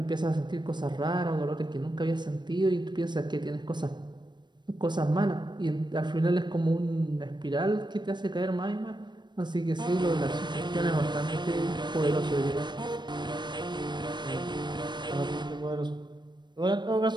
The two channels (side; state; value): left; late; 0.22 ms